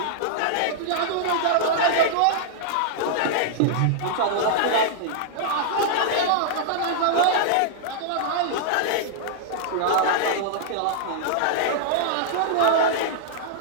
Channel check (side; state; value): both; different; correlation -0.02